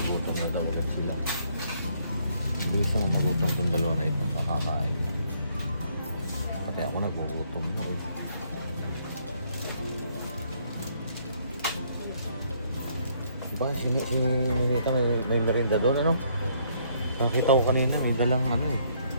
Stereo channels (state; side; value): inverted; both; correlation -0.68